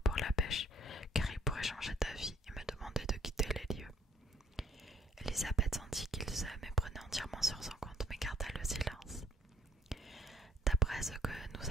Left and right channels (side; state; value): both; normal; correlation 0.60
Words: Elisabeth sentit qu'il se méprenait entièrement sur son compte, mais garda le silence. D'après ce que nous